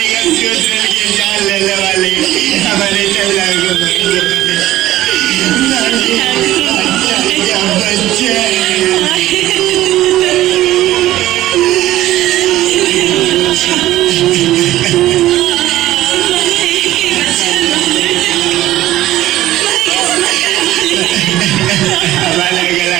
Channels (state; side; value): quieter; left; 14.9 dB